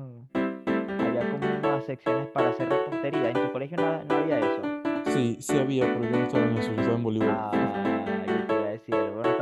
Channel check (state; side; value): identical; both; correlation 1.00